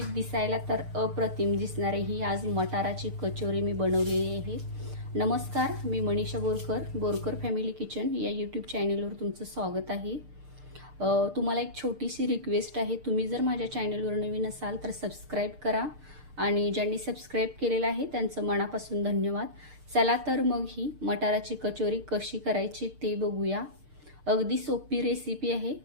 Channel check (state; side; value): late; left; 6.6 ms